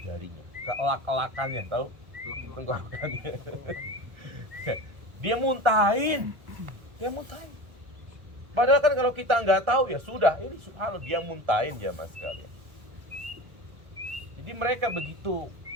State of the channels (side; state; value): left; late; 1.3 ms